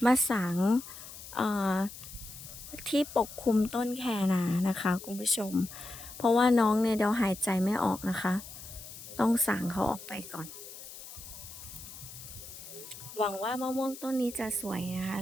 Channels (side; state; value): left; noise; hiss, 14 dB below the sound